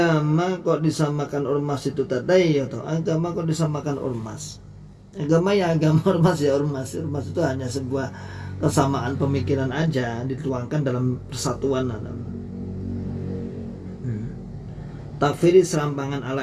kok disamakan ormas itu tadi ya toh. Agama kok disamakan ormas. Agama ya agama, ormas ya ormas. Ormas itu hanya sebuah kesamaan pemikiran aja dituangkan dalam persatuan. Takfiri serampangan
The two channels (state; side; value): identical; both; correlation 1.00